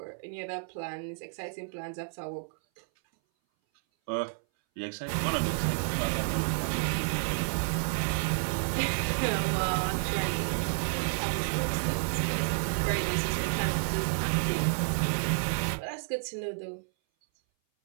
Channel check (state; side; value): silent; left; 57 dB below the other